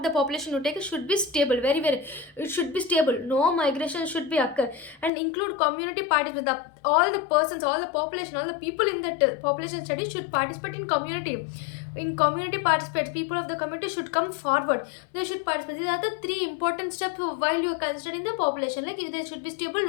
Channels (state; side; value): drops out; right; at 5.1 s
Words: the population you take should be stable, very very, it should be stable, no migration should be occur, and include community participation. All the persons, all the population, all the people in that population study should participate in community. in community participants, people of the community should come forward. They should participate. These are the three important steps while you are considering the population. Like there should be stable,